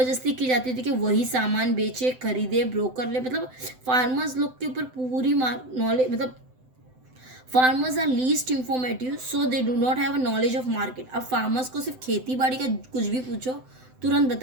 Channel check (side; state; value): left; late; 7.8 ms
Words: की जाती थी कि वही सामान बेचे, खरीदे, ब्रोकर ले। मतलब फार्मर्स लोग के ऊपर पूरी नॉलेज, मतलब farmers are least informative so they do not have a knowledge of market. अब फार्मर्स को सिर्फ खेती बाड़ी का कुछ भी पूछो तुरंत